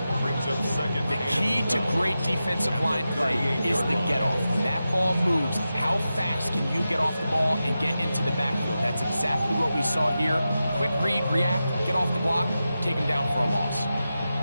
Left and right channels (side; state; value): both; inverted; correlation -0.91